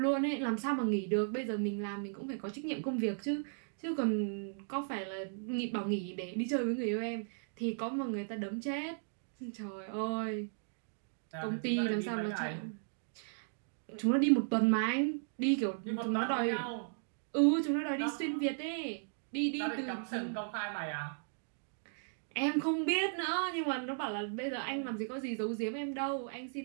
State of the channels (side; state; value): left; silent; digital silence